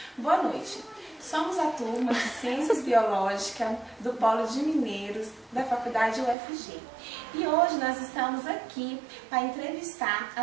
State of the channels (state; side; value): drops out; left; at 6.4 s